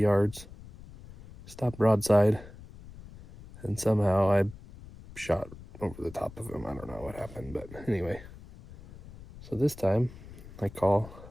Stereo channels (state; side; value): noise; left; rumble, 17 dB below the sound